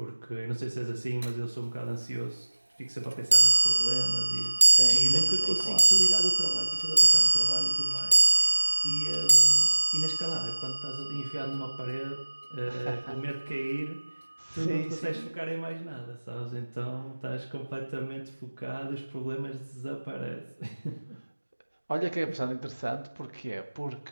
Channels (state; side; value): inverted; both; correlation -1.00